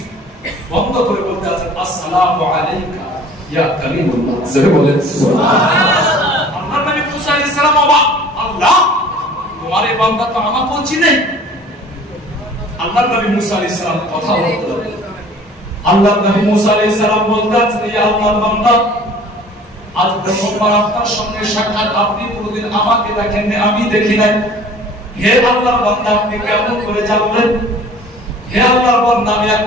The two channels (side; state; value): both; normal; correlation 0.48